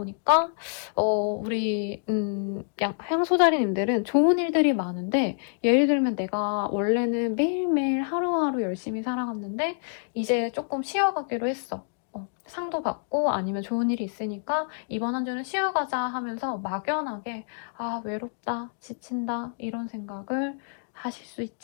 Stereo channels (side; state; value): right; silent; digital silence